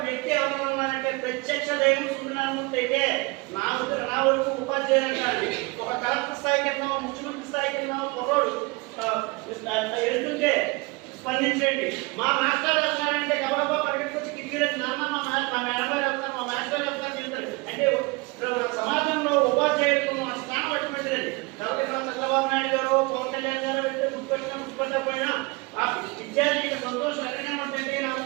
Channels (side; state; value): left; quieter; 26.1 dB